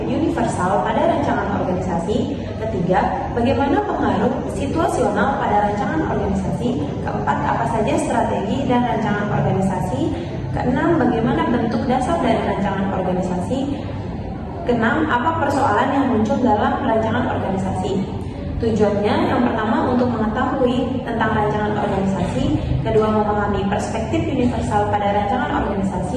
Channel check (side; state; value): both; identical; correlation 1.00